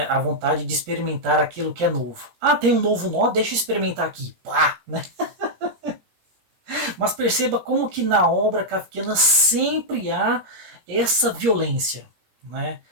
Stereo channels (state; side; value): late; left; 17 ms